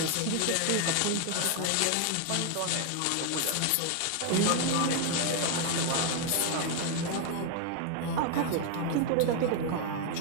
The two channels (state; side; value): different; both; correlation 0.01